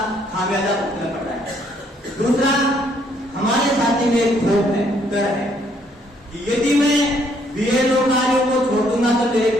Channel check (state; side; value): normal; both; correlation 0.68